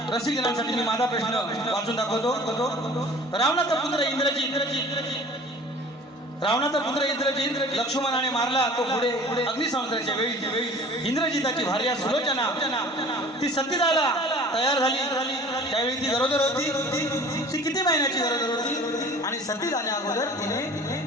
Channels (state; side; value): normal; both; correlation 0.45